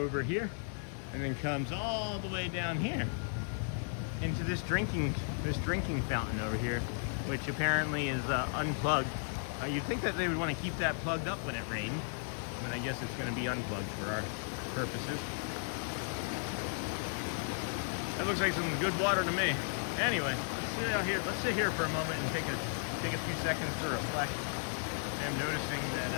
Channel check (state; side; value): silent; right; digital silence